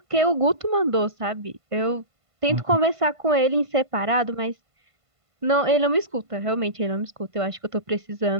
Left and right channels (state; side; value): late; left; 1.5 ms